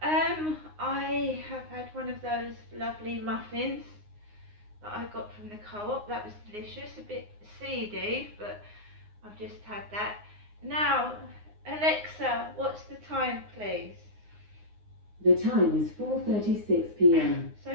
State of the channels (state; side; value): late; left; 9.6 ms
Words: I have had one of those lovely muffins that I got from the co-op. That was delicious, a bit seedy, but I've just had that. Now, Alexa, what's the time, please? The time is 4:36 p.m. So